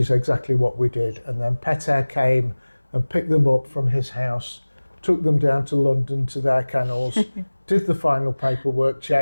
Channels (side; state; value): both; inverted; correlation -1.00